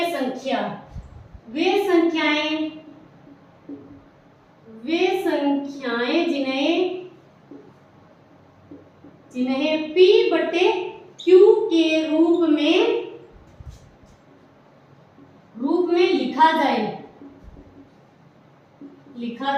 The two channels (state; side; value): identical; both; correlation 1.00